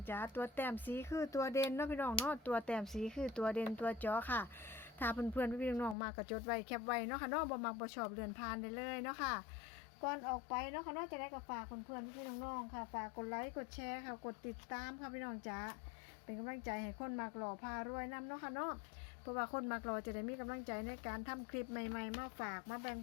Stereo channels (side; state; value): right; drops out; at 6.0 s